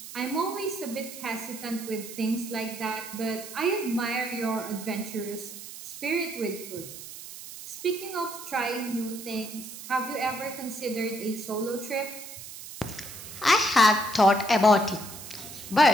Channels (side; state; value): right; noise; hiss, 12 dB below the sound